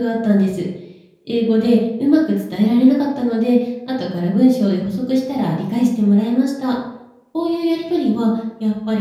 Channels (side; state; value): both; identical; correlation 1.00